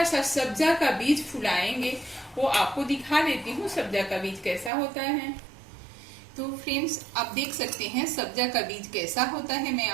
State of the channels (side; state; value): left; drops out; at 4.7 s